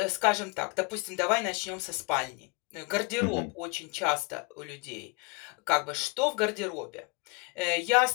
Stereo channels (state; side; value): quieter; right; 30.3 dB